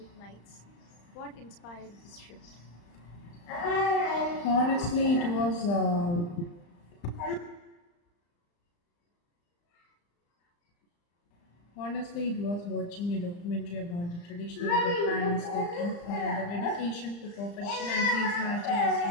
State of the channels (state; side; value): late; right; 35 ms